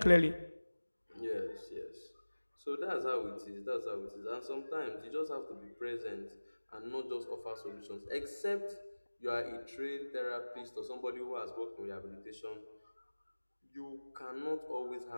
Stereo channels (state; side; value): inverted; both; correlation -1.00